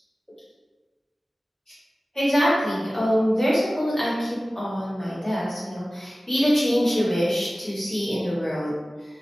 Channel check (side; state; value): both; normal; correlation 0.97